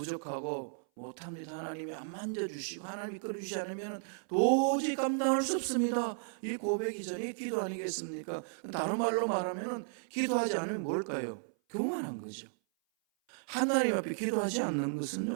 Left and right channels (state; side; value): silent; left; 55 dB below the other